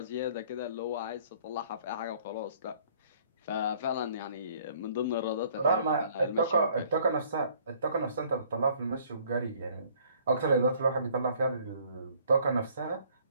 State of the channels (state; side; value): inverted; both; correlation -0.58